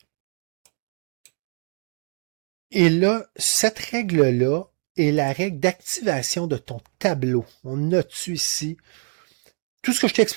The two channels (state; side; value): quieter; left; 37.4 dB